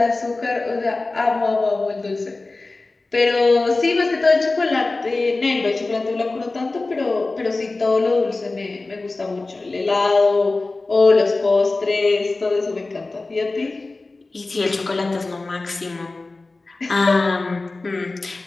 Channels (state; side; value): quieter; right; 3.3 dB